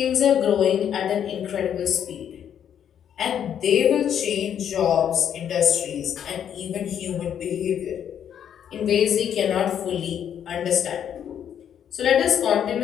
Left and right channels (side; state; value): right; quieter; 9.1 dB